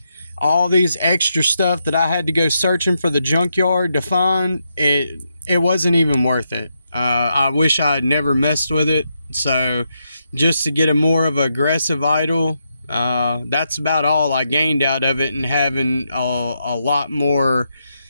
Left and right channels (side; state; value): both; inverted; correlation -0.82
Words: all these extra stuff that I had to go searching for the junkyard to find, it wasn't even worth it. I wish I had never messed with it. So just to get a more of an aggressive idle, that's about all I gained out of it. And having a lot more,